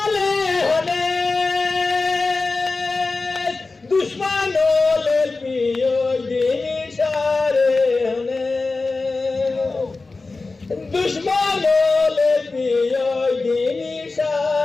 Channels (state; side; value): quieter; right; 3.7 dB